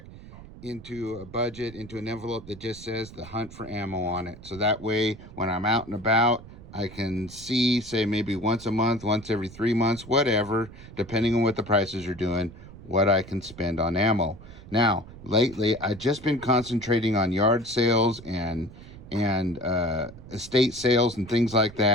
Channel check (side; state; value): right; noise; rumble, 17 dB below the sound